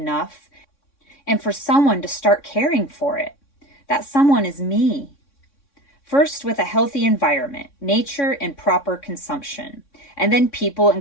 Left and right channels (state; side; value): late; right; 3.6 ms